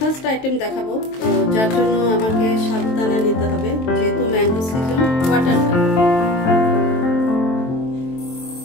আইটেম দেখাবো, যার জন্য আমাকে সাবুদানা নিতে হবে, যেহেতু ম্যাঙ্গো সিজন। ওয়াটার কাপ,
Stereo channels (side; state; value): right; late; 23 ms